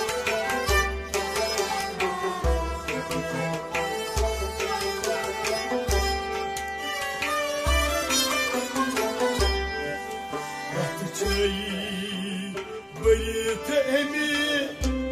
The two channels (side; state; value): both; identical; correlation 1.00